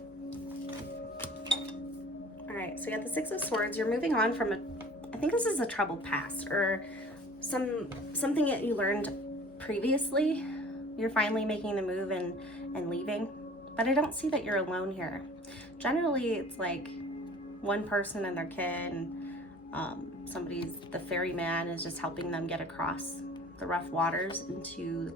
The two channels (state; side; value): normal; both; correlation 0.46